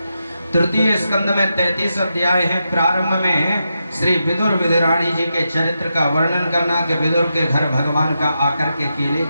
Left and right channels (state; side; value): inverted; both; correlation -0.86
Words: तृतीय स्कंद में 33 अध्याय हैं। प्रारंभ में श्री विदुर विदुराणी जी के चरित्र का वर्णन करना कि विदुर के घर भगवान का आकर के केले